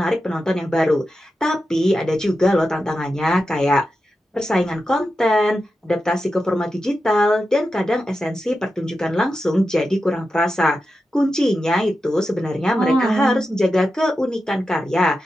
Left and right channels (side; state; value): both; normal; correlation 0.90